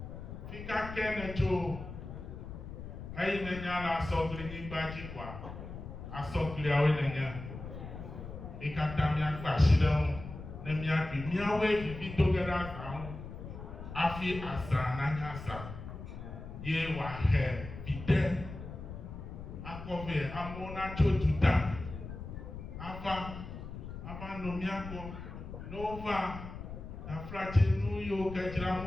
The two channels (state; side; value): noise; left; rumble, 10 dB below the sound